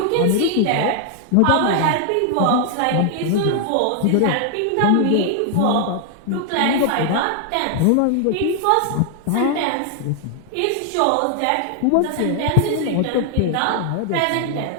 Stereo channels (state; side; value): different; both; correlation 0.00